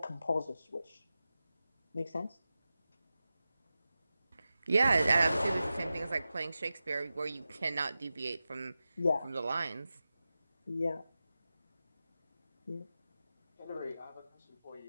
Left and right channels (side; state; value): both; inverted; correlation -0.93